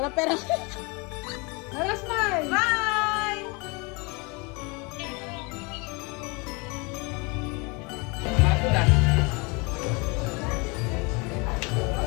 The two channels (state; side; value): quieter; right; 29.1 dB